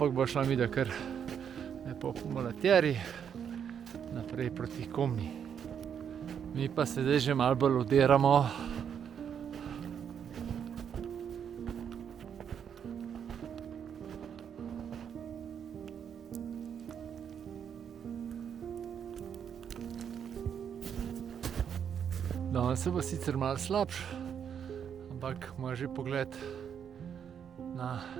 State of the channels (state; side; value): quieter; left; 8.0 dB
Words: bo šla midva kar lepo po Molatjeri naprej proti Komni. Mi pa se zdaj že malo bolj odiramo. Danes se bo sicer malo slabš, ampak ima že pogled na